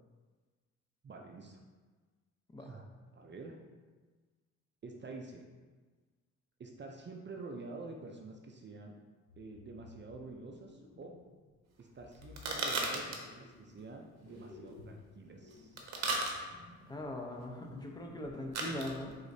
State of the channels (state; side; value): normal; both; correlation 0.21